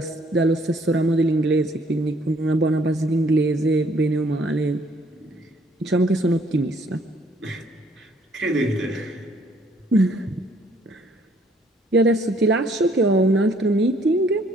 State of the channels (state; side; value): normal; both; correlation 0.63